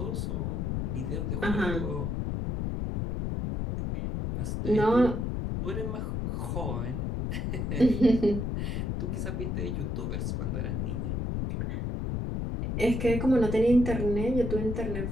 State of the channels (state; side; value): noise; left; rumble, 1 dB below the sound